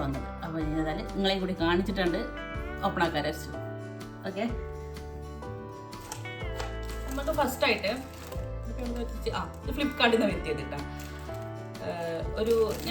വന്നത്. അപ്പോൾ ഏതായാലും നിങ്ങളെയും കൂടി കാണിച്ചിട്ടുണ്ട് ഓപ്പൺ ആക്കാൻ വെച്ചു. ഓക്കെ, നമുക്ക് ഫസ്റ്റായിട്ട് ഇത് ഫ്ലിപ്കാർട്ടിൽ നിന്ന് വരുത്തിയത് കേട്ടോ. ഒരു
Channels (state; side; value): identical; both; correlation 1.00